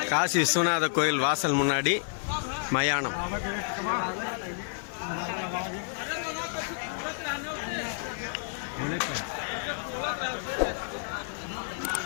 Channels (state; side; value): silent; right; digital silence